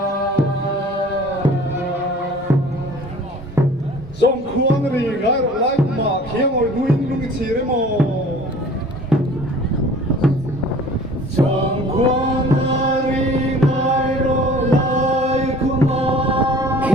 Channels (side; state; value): both; normal; correlation 0.47